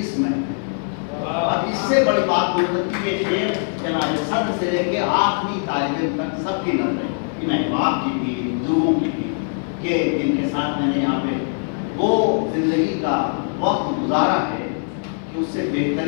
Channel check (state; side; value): silent; right; 64 dB below the other